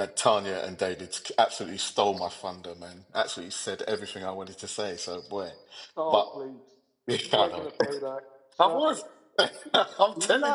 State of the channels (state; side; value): identical; both; correlation 1.00